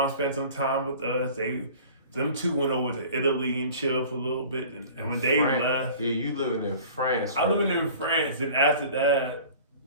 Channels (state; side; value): inverted; both; correlation -0.44